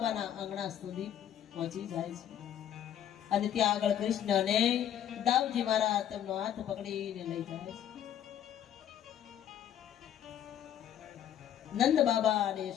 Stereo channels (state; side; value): quieter; right; 10.2 dB